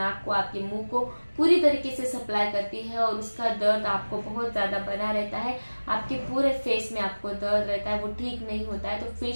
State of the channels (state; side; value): inverted; both; correlation -1.00